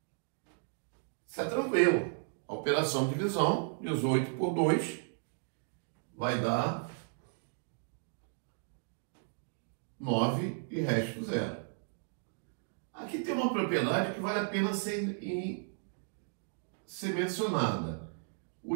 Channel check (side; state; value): left; silent; digital silence